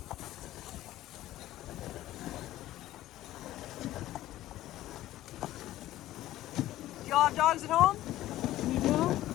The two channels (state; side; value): quieter; right; 14.7 dB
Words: Do y'all have dogs at home? You